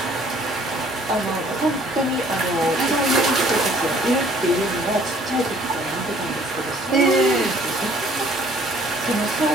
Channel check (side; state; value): both; normal; correlation 0.58